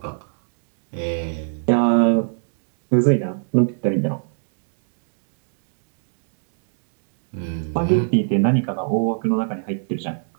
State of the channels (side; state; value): left; silent; digital silence